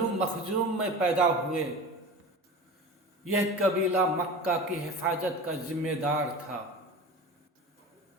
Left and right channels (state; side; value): normal; both; correlation 0.33